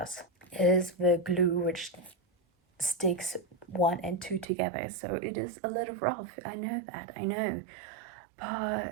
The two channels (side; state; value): left; drops out; at 4.5 s